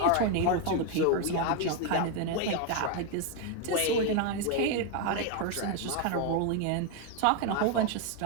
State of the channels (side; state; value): both; different; correlation 0.01